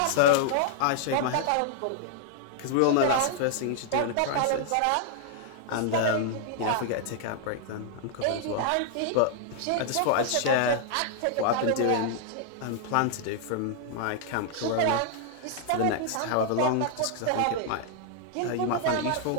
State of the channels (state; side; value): different; both; correlation -0.01